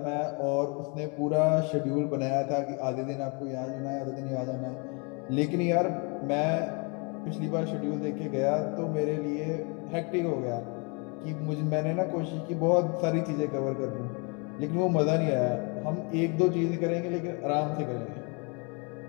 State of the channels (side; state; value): right; quieter; 33.2 dB